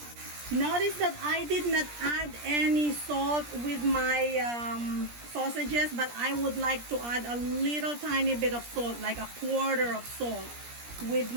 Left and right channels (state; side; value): late; left; 17 ms